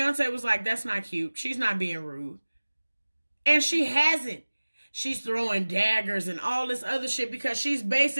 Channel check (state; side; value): inverted; both; correlation -1.00